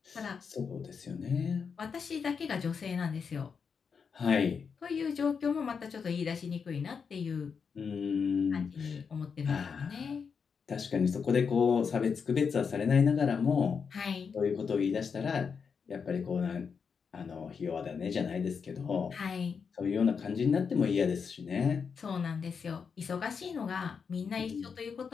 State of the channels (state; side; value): quieter; right; 6.0 dB